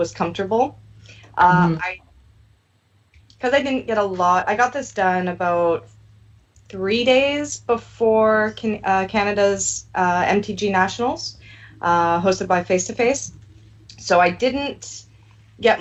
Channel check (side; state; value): both; identical; correlation 1.00